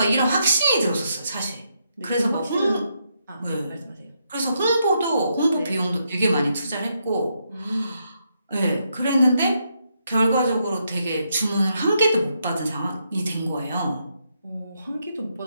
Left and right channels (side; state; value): both; inverted; correlation -0.79